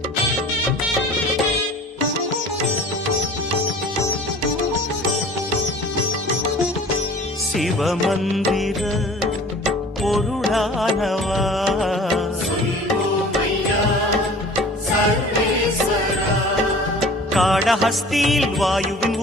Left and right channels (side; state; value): both; normal; correlation 0.44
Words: சிவமந்திர பொருளானவா, காடஹஸ்தியில் வாயுவின்